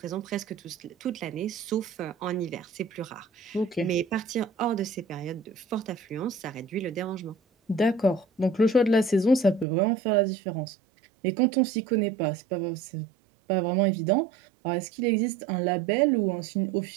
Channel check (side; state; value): left; drops out; at 9.7 s